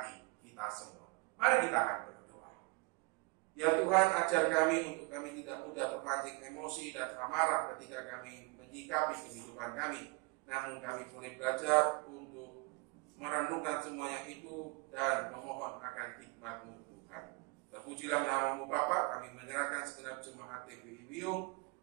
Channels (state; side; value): quieter; left; 27.5 dB